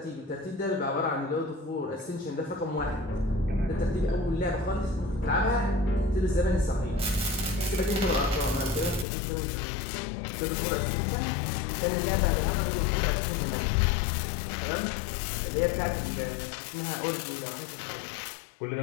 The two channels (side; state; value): right; drops out; at 9.1 s